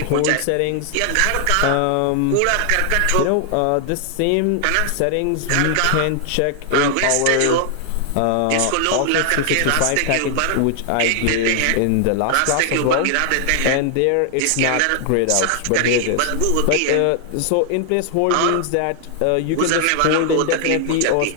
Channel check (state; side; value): different; both; correlation 0.00